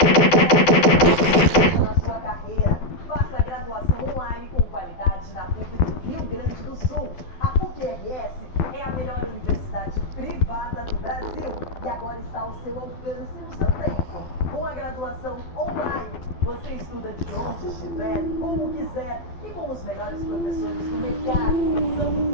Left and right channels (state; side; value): late; right; 12 ms